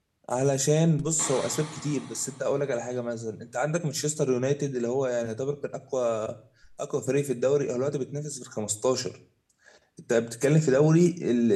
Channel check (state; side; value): identical; both; correlation 1.00